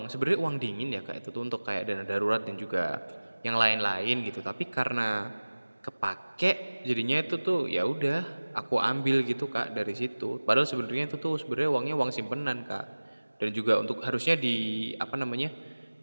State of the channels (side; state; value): both; inverted; correlation -1.00